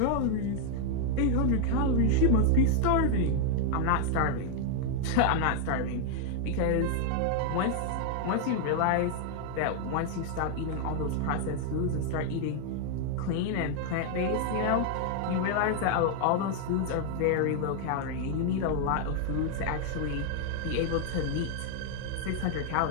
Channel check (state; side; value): different; both; correlation 0.00